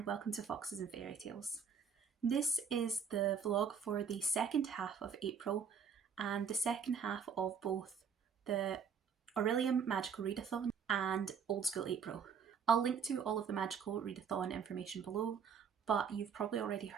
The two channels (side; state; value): left; quieter; 6.7 dB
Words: welcome to Foxes and Fairy Tales. This is the vlog for the second half of April and the second half of both the Aurelium Magical Readathon and Old School April. I'll link to all of the Magical Readathon information below, but you've probably already